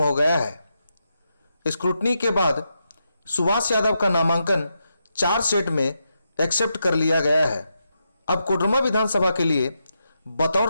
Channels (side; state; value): both; inverted; correlation -0.85